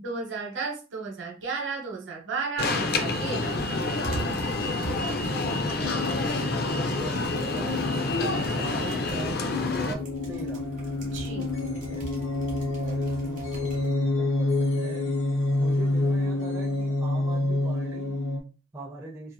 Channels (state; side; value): normal; both; correlation 0.55